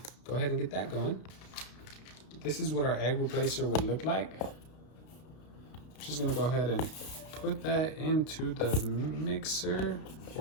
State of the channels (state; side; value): late; right; 32 ms